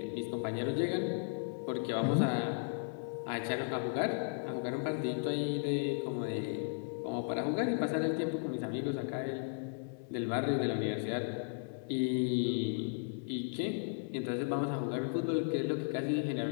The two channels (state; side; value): silent; right; digital silence